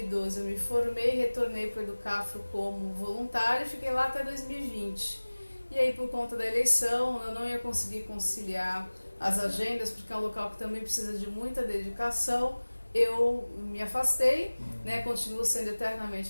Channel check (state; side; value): inverted; both; correlation -1.00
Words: eu me formei, retornei para o Educafro como voluntária e fiquei lá até 2020. E aí por conta da eleição eu não ia conseguir conciliar as agendas, porque é um local que também precisa de muita dedicação. Eu me afastei, né, continuo sendo